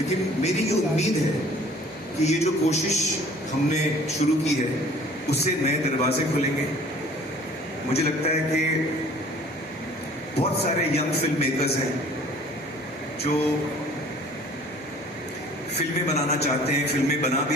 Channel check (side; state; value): both; normal; correlation 0.51